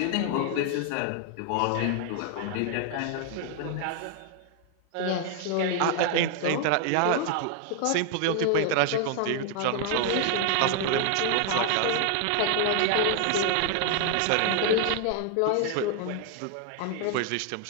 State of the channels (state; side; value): different; both; correlation 0.00